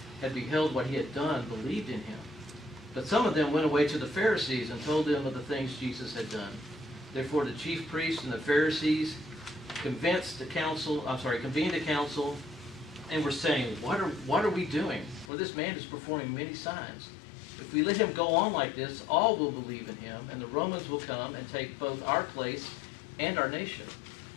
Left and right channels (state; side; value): drops out; right; at 15.3 s